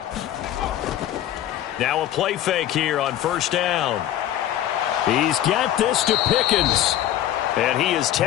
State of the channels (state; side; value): quieter; right; 12.2 dB